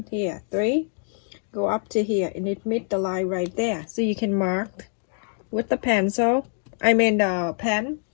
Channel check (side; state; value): right; silent; digital silence